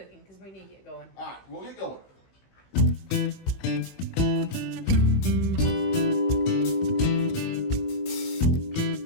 because we need to get going. All right, we'll get going.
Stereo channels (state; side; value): late; right; 16 ms